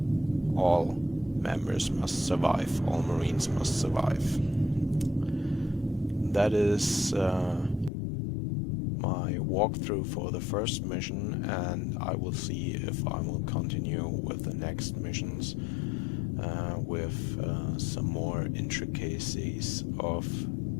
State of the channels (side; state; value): right; drops out; at 7.9 s